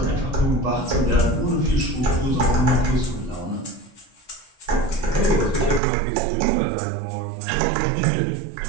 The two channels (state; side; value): drops out; left; at 5.8 s